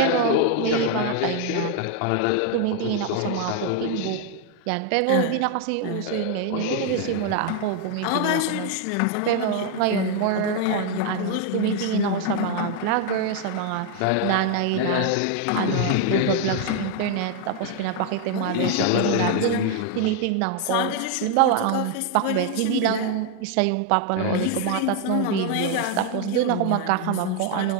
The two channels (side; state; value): both; different; correlation 0.00